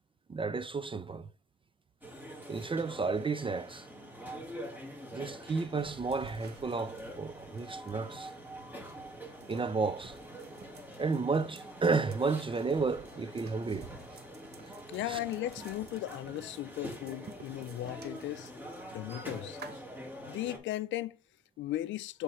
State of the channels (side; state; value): both; normal; correlation 0.54